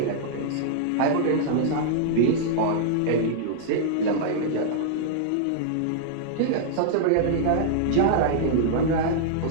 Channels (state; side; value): different; both; correlation -0.01